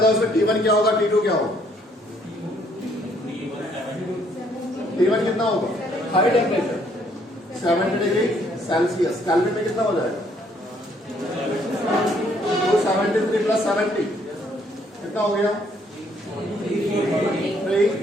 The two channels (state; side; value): normal; both; correlation 0.66